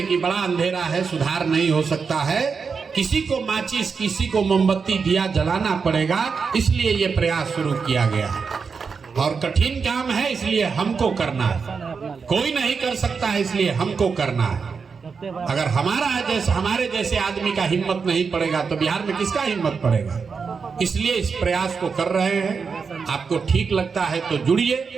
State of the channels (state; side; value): quieter; left; 5.4 dB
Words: कि बड़ा अंधेरा है, सुधार नहीं हो सकता है। किसी को माचिस, किसी को मोमबत्ती दिया जलाना पड़ेगा, इसलिए ये प्रयास शुरू किया गया है। और कठिन काम है, इसलिए हमको करना है। कोई नहीं कर सकता है, इसलिए हमको करना है। अगर हमारे जैसे आदमी का हिम्मत नहीं पड़ेगा तो बिहार में किसका हिम्मत पड़ेगा? इसलिए इस प्रयास को कर रहे हैं। आपको ठीक लगता है तो जुड़िए,